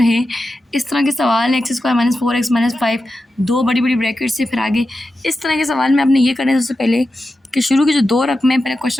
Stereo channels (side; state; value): both; normal; correlation 0.91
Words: है इस तरह के सवाल x square minus 4x minus 5 दो बड़ी बड़ी ब्रैकेट से फिर आगे इस तरह के सवाल में आपने ये करना है सबसे पहले कि शुरू की जो 2 रकमें पहले